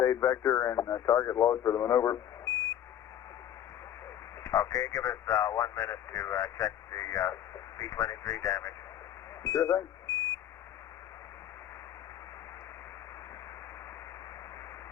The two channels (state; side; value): quieter; right; 10.9 dB